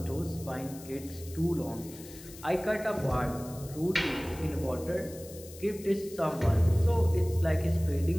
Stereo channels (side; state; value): left; noise; hiss, 17 dB below the sound